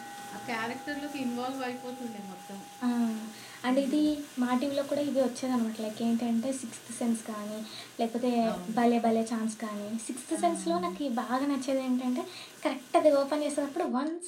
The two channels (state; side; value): identical; both; correlation 1.00